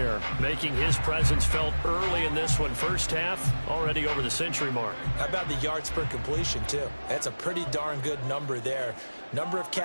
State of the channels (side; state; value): both; inverted; correlation -1.00